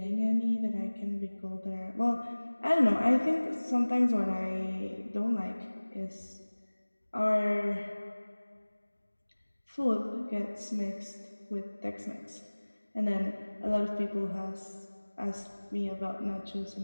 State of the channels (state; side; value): inverted; both; correlation -1.00